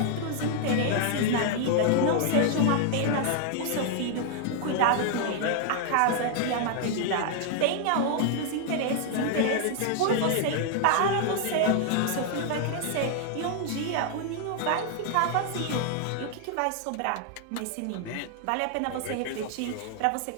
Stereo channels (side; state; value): both; different; correlation 0.00